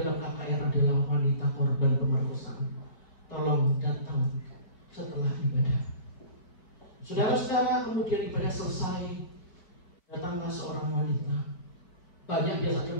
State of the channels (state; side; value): late; right; 5.1 ms